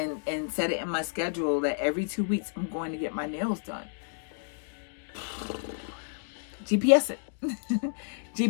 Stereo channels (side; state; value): right; silent; digital silence